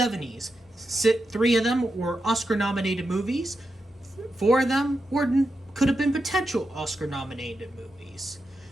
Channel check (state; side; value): normal; both; correlation 0.88